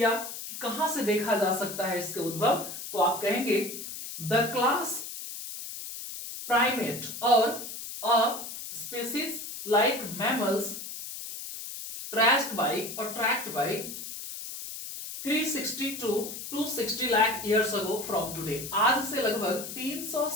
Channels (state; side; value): noise; left; hiss, 9 dB below the sound